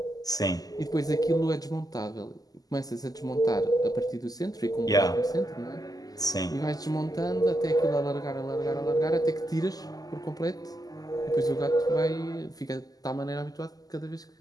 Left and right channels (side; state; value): right; late; 0.18 ms